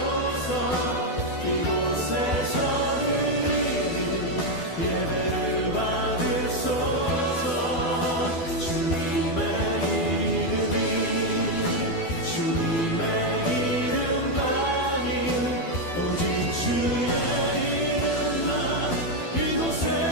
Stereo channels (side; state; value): right; late; 12 ms